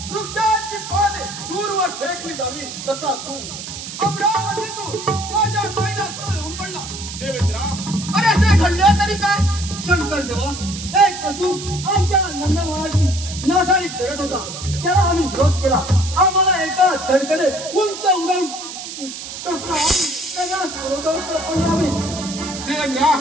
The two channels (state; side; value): noise; right; hiss, 9 dB below the sound